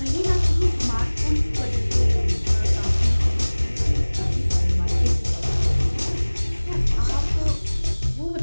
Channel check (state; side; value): inverted; both; correlation -1.00